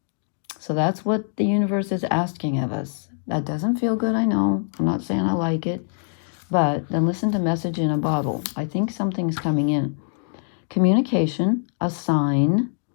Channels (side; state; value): right; silent; digital silence